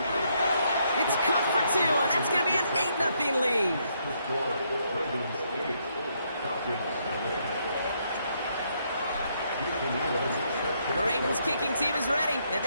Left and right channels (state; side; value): inverted; both; correlation -0.74